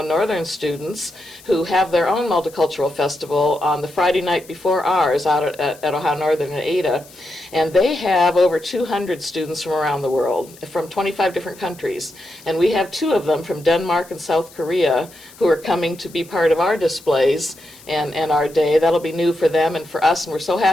Northern students who have their own multicultural festival on the Friday night before ours out at Ohio Northern in Ada. And they have over 200 students from around the world, from 25 different countries. And we have 2 of them from Denmark and South Korea who are coming to be part of our display displays and our day. That'll be new for them and for us, and we're so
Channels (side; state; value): left; noise; hiss, 22 dB below the sound